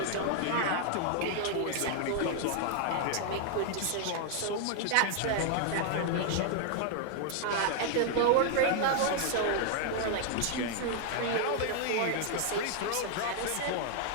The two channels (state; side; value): different; both; correlation 0.00